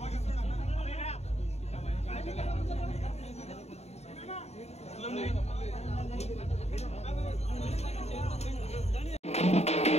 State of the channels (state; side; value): late; right; 0.31 ms